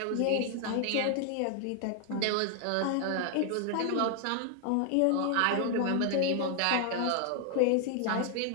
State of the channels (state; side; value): different; both; correlation 0.00